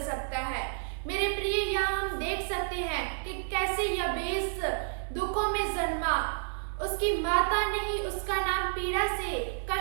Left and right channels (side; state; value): left; silent; digital silence